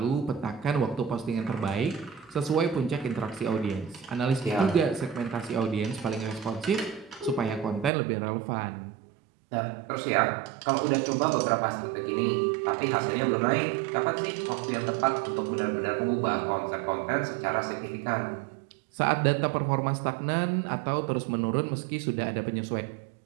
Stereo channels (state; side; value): drops out; left; at 7.9 s